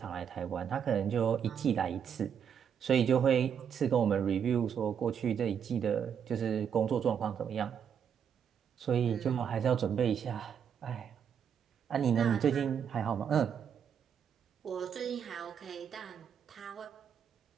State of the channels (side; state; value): left; quieter; 7.9 dB